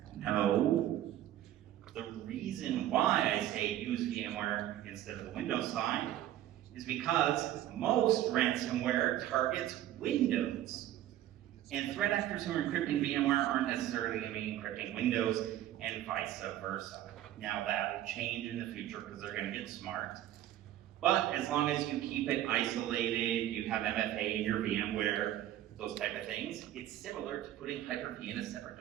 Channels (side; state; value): left; quieter; 12.9 dB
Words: No. The reason why I say use VMware instead of the Windows side is because most ransomware targets Windows. And threat actors who are encrypting VMware aren't necessarily going to be encrypting Windows, and vice versa. Now that will change in the future because they're going to get smart. But as long as you keep it isolated, you have MFA in your VMware, those type of things, it's similar to putting Hyper-V in a separate